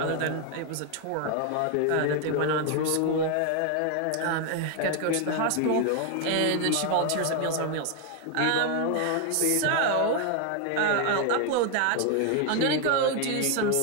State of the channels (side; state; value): both; different; correlation 0.00